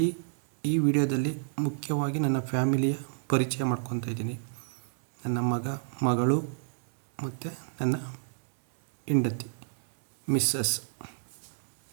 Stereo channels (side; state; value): left; silent; digital silence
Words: ಈ ವಿಡಿಯೋದಲ್ಲಿ ಮುಖ್ಯವಾಗಿ ನನ್ನ ಫ್ಯಾಮಿಲಿಯ ಪರಿಚಯ ಮಾಡ್ಕೊತಾ ಇದ್ದೀನಿ. ನನ್ನ ಮಗಳು ಮತ್ತು ನನ್ನ ಹೆಂಡತಿ ಮಿಸ್ಸಸ್